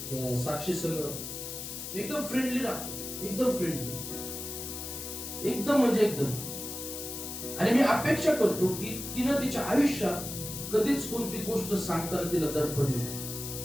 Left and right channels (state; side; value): noise; left; hiss, 7 dB below the sound